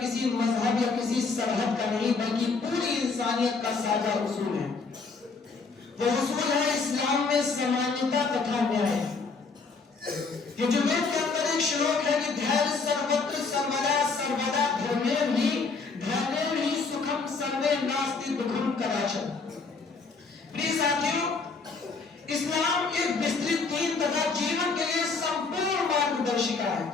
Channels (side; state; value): right; quieter; 4.4 dB